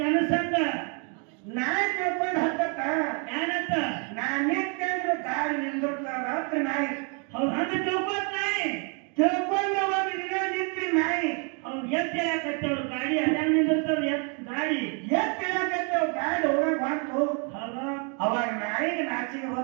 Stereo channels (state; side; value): quieter; left; 36.8 dB